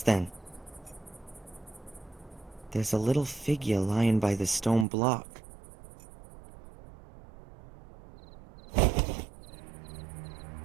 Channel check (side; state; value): left; drops out; at 4.9 s